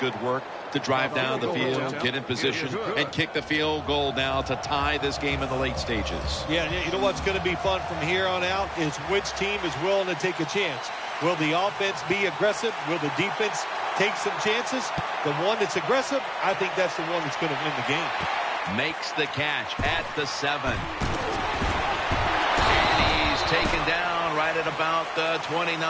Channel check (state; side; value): identical; both; correlation 1.00